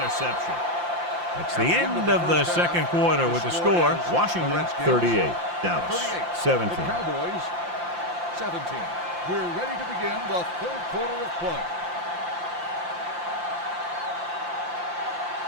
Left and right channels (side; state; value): left; late; 5.8 ms